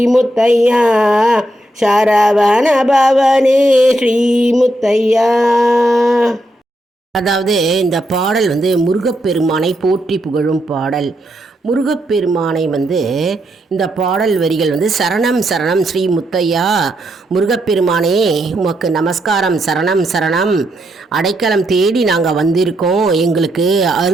முத்தையா, சரவண பவனே ஸ்ரீ முத்தையா. அதாவது இந்த பாடல் முருகப்பெருமானை போற்றி புகழும் பாடல். முருகப்பெருமானை இந்த பாடல் வரிகள் சரணம் சரணம் ஸ்ரீ முத்தையா, முருகப்பெருமானே உமக்கு நமஸ்காரம், சரணம் சரணம், அடைக்கலம் தேடி நாங்கள் வந்திருக்கோம், எங்களுக்கு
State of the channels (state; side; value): normal; both; correlation 0.80